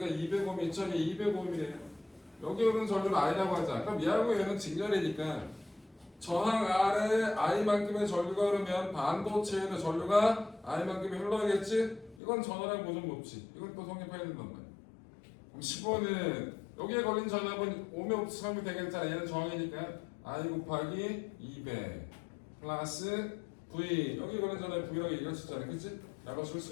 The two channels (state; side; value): drops out; right; at 12.2 s